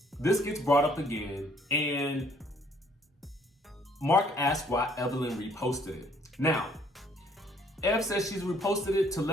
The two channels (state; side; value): normal; both; correlation 0.62